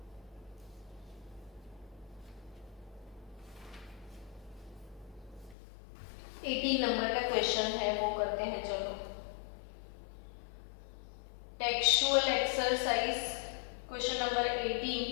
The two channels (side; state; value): right; drops out; at 5.6 s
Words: नंबर का क्वेश्चन है वो करते हैं। चलो textual exercise question number 18,